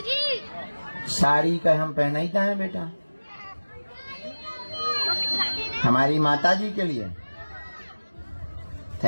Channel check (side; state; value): both; inverted; correlation -1.00